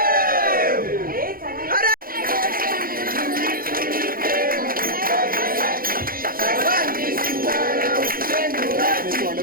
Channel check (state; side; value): late; left; 0.42 ms